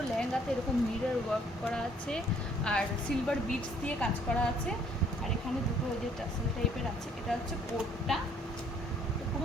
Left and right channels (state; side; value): normal; both; correlation 0.62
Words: লেহেঙ্গাতে এরকম মিরর ওয়ার্ক করা আছে, আর সিলভার বিটস দিয়ে কাজ করা আছে, আর এখানে দুটো ওই যে টাসেল টাইপের আছে। এটা হচ্ছে কোটটা,